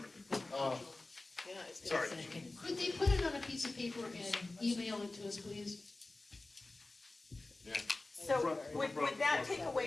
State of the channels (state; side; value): quieter; right; 3.1 dB